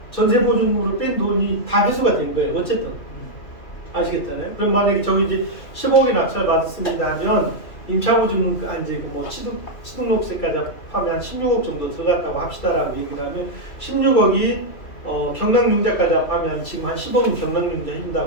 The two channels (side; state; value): right; late; 2.8 ms